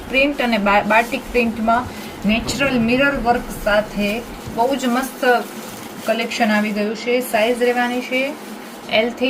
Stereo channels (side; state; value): both; identical; correlation 1.00